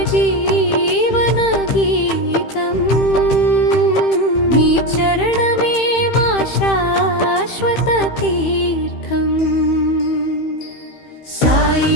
జీవన గీతం నీ చరణమే మా శాశ్వత తీర్థం సాయి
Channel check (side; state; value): right; late; 15 ms